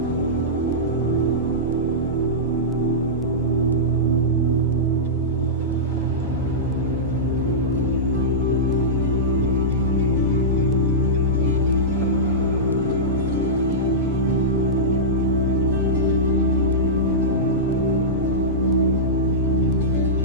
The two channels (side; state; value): both; normal; correlation -0.14